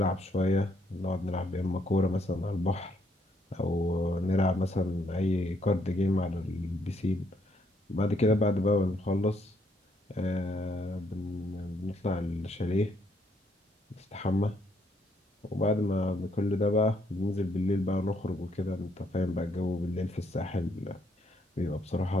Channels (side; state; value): both; normal; correlation 0.72